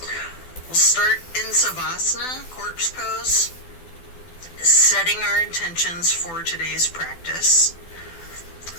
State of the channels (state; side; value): late; right; 12 ms